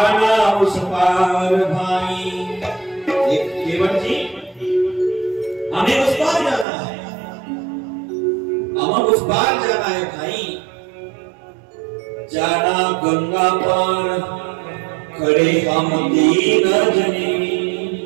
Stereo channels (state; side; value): drops out; left; at 6.7 s